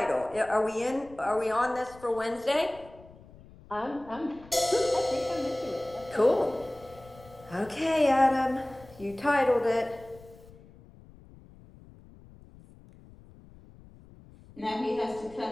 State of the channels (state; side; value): noise; left; rumble, 22 dB below the sound